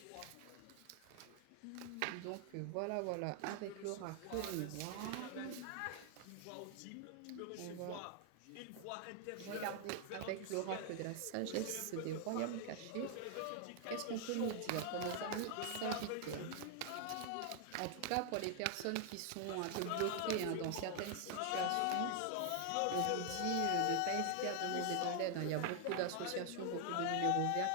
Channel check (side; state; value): both; different; correlation 0.00